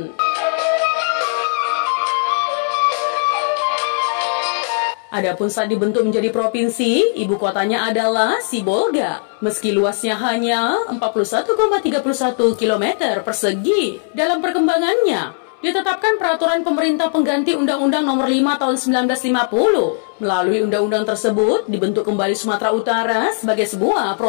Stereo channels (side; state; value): right; silent; 67 dB below the other